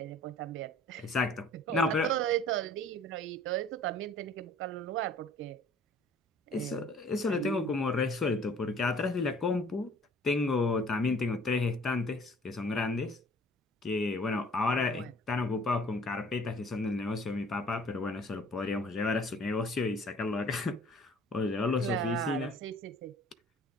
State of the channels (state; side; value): normal; both; correlation 0.52